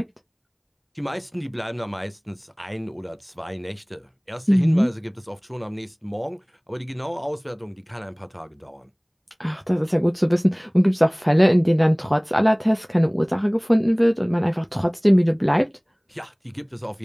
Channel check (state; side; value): identical; both; correlation 1.00